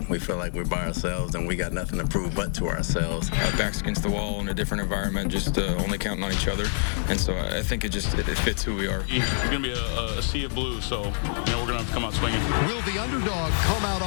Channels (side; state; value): right; silent; digital silence